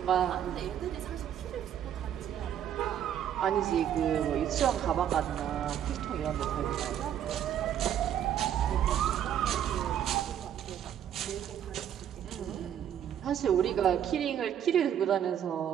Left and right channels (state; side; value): quieter; left; 9.9 dB